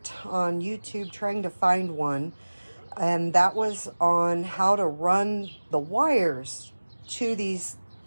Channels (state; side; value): inverted; both; correlation -1.00